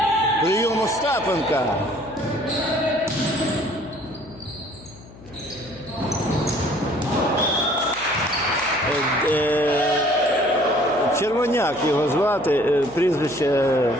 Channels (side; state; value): left; noise; hum, 20 dB below the sound